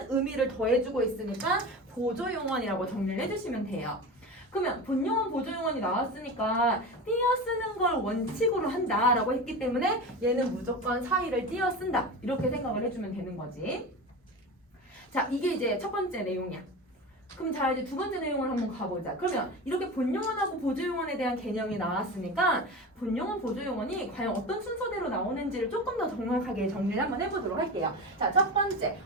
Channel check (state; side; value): normal; both; correlation 0.28